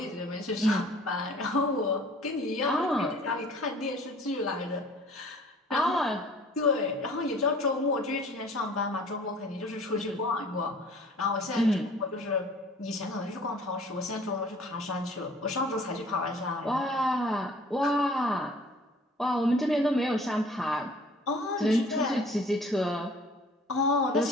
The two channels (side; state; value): both; normal; correlation 0.50